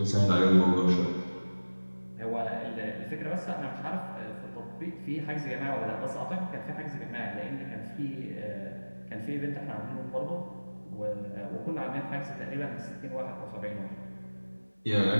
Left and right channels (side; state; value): both; inverted; correlation -1.00